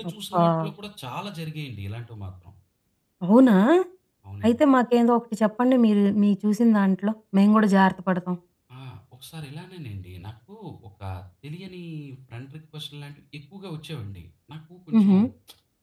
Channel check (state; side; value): identical; both; correlation 1.00